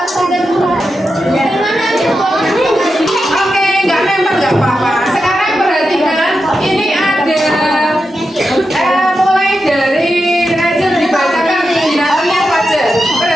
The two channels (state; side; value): normal; both; correlation 0.89